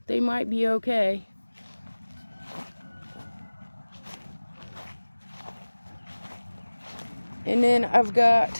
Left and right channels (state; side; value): inverted; both; correlation -1.00